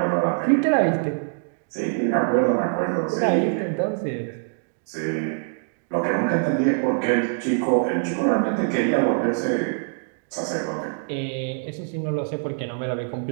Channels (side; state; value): left; silent; digital silence